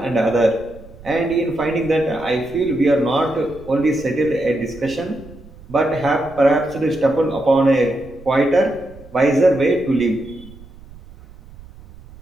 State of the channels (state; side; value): noise; right; rumble, 21 dB below the sound